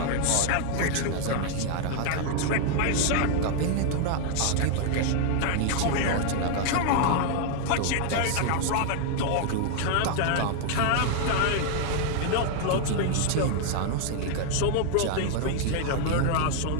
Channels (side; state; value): both; different; correlation 0.00